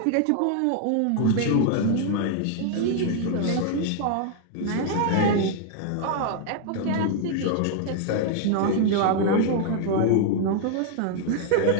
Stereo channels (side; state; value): both; different; correlation 0.00